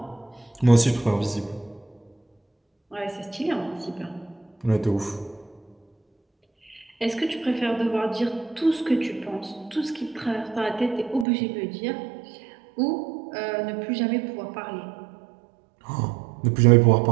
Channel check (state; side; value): drops out; left; at 11.2 s